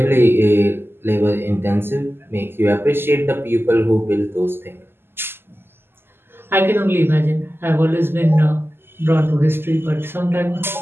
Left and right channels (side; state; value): left; late; 0.11 ms